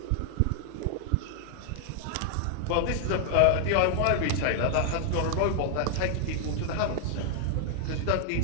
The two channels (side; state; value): both; different; correlation 0.00